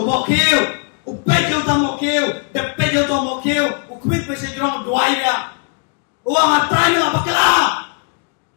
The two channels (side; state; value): right; quieter; 38.0 dB